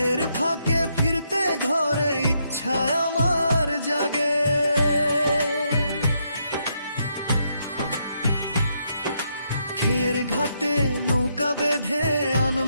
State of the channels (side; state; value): both; inverted; correlation -0.77